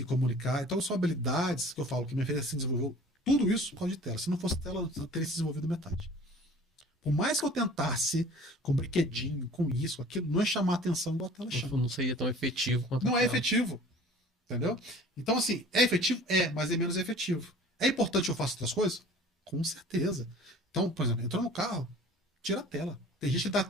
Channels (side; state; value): both; normal; correlation 0.46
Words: comunicar. Então, são habilidades que eu falo que minha filha se desenvolveu tudo isso por causa de tela. Se não fosse tela, eu teria se desenvolvido metade. Por mais que eu tentasse com brinquedinho, com isso, com aquilo, não é chamar a atenção igual a tela chama. Não seria tão efetivo quanto Não é aquela. efetivo. Entendeu? Então, assim, é efetivo? É, mas é menos efetivo. É importante eu faço outras coisas? Com certeza. Então, por exemplo, entrou no carro, tira a tela. Tem gente que dá.